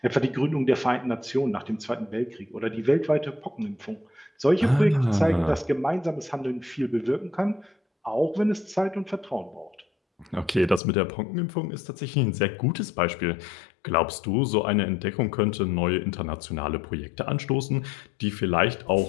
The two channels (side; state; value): right; drops out; at 10.8 s